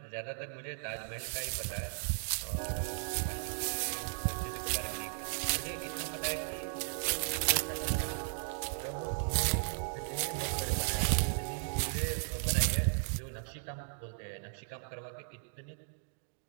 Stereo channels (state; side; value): silent; left; digital silence